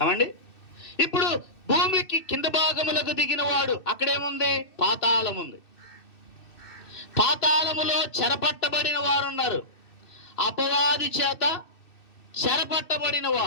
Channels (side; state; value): right; late; 2.7 ms